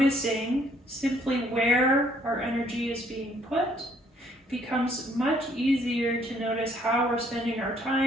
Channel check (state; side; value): normal; both; correlation 0.65